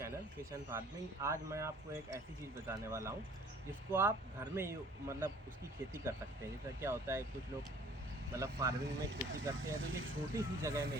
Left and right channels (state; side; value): normal; both; correlation 0.53